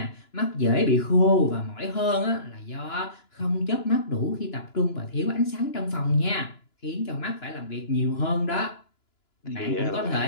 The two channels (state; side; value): late; right; 2.9 ms